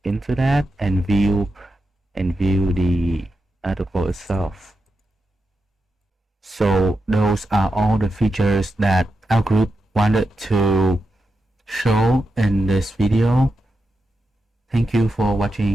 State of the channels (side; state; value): both; normal; correlation 0.88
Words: into that and view the article itself. So those are all the features that our group wanted to show in this video. Thank you for